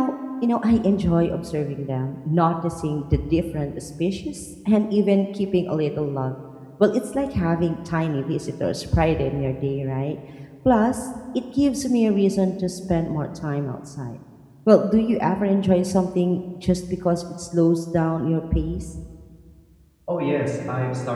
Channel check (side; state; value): both; identical; correlation 1.00